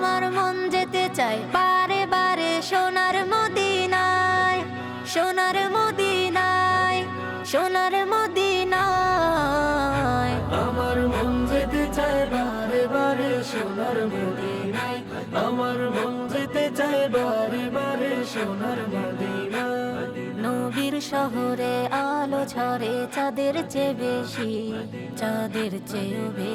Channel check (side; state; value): both; identical; correlation 1.00